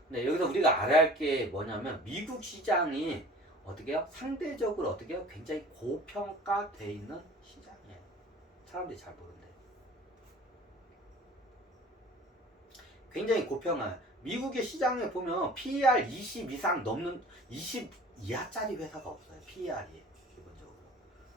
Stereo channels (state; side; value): normal; both; correlation 0.46